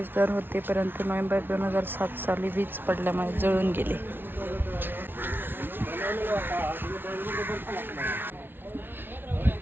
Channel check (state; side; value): late; left; 0.10 ms